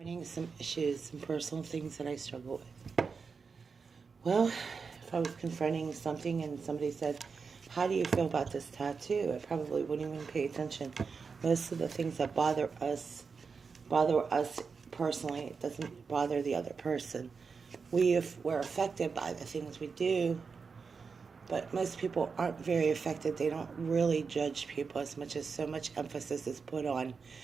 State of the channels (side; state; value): left; quieter; 5.2 dB